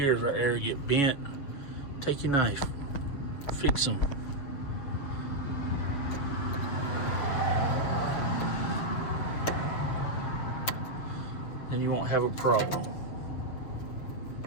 right there get bent. Take your knife. Fix them. Then you won't have a problem.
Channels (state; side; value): late; right; 7.3 ms